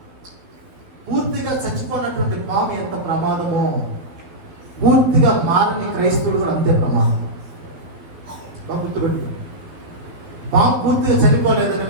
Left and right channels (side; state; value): left; late; 12 ms